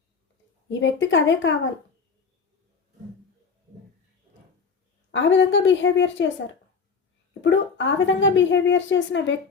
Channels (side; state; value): right; quieter; 5.4 dB